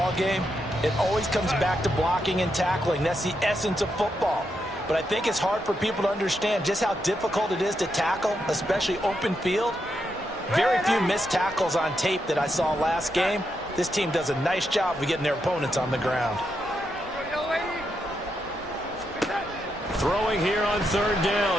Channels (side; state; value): both; normal; correlation 0.82